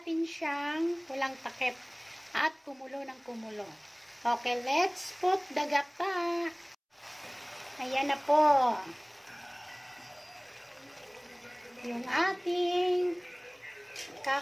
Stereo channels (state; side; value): identical; both; correlation 1.00